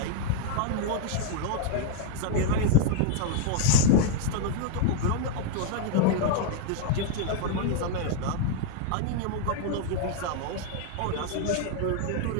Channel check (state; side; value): different; both; correlation 0.00